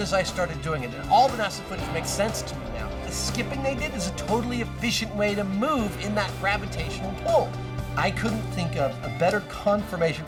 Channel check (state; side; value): identical; both; correlation 1.00